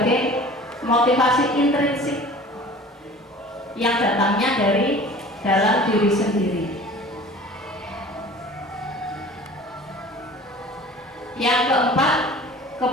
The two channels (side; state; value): both; normal; correlation 0.44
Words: motivasi intrinsik yang datangnya dari dalam diri sendiri. Yang keempat,